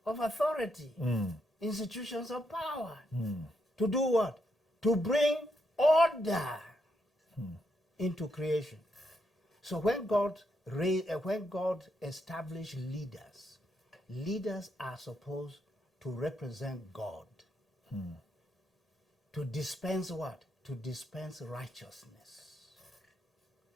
of authority, institutions of power. To do what? To bring order into creation. So when God established leaders, leaders are supposed to represent God. To dispense what? To dispense righteousness.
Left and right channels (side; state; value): both; normal; correlation 0.79